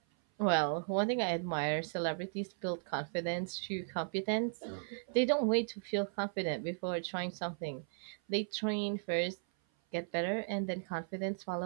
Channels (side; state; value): left; silent; 54 dB below the other